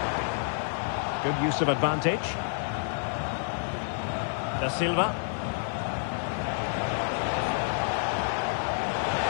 Good use of advantage. Da Silva.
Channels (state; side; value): silent; right; digital silence